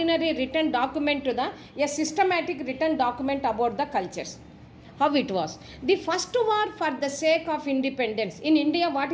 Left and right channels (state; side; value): identical; both; correlation 1.00